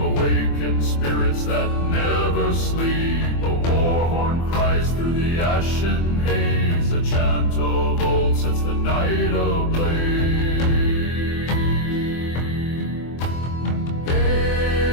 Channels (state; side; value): late; right; 24 ms